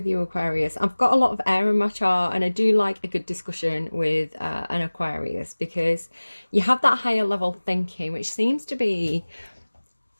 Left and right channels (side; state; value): both; inverted; correlation -1.00